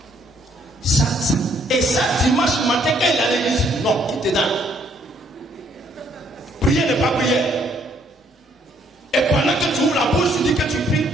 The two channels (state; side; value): normal; both; correlation 0.67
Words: Ça. Et ça, dimanche matin, quand il allait l'église, non, quitte dedans. Prier n'est pas prière. Et pendant que tu ouvres la bouche, tu dis que tu pries.